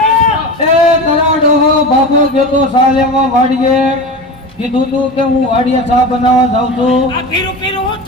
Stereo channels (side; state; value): both; normal; correlation 0.28